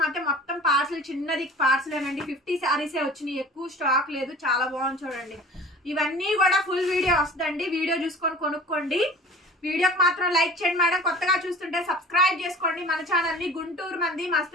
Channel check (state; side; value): normal; both; correlation 0.42